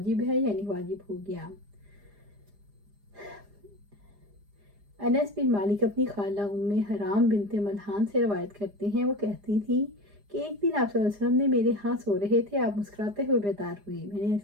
ہے، یعنی واجب ہو گیا۔ انس بن مالک اپنی خالہ ام حرام بنت ملحان سے روایت کرتے ہیں، وہ کہتی تھی کہ ایک دن آپ صلی اللہ علیہ وسلم نے میرے ہاں سو رہے تھے، آپ مسکراتے ہوئے بیدار ہوئے۔ میں نے عرض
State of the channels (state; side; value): late; left; 4.9 ms